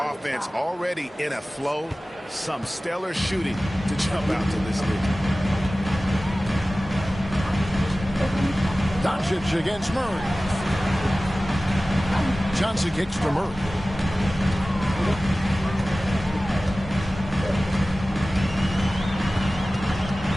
already in a flow. Some stellar shooting to jump out to this lead. Doncic against Murray. Johnson kicks to Murray.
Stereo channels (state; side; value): normal; both; correlation 0.97